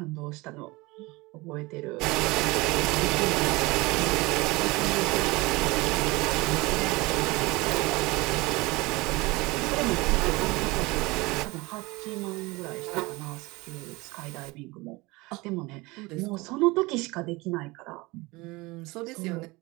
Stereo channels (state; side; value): quieter; left; 23.0 dB